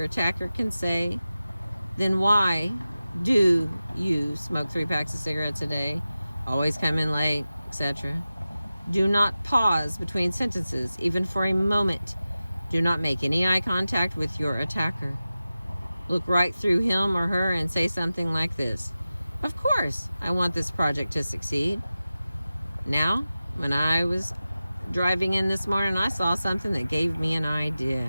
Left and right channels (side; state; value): both; inverted; correlation -0.95